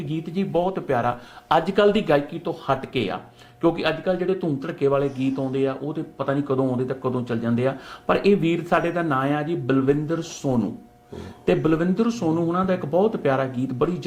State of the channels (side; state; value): both; identical; correlation 1.00